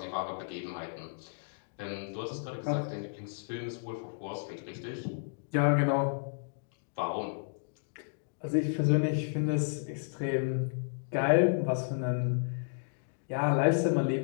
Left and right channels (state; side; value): silent; right; digital silence